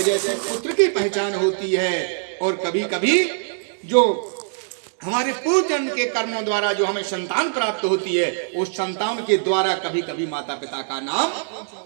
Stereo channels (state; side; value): silent; left; digital silence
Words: से पुत्र की पहचान होती है, और कभी कभी जो हमारे पूर्व जन्म के कर्मों द्वारा जो हमें संतान प्राप्त होती है, उस संतान के द्वारा कभी कभी माता पिता का नाम